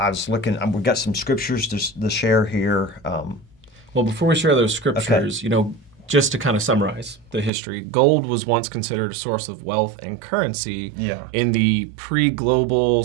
was looking, we've got some scriptures to share here. Well, before we share those scriptures, just to kind of summarize the history, gold was once considered a source of wealth and currency in the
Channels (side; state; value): left; drops out; at 7.5 s